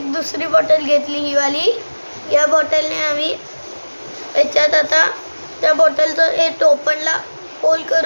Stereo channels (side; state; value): both; inverted; correlation -1.00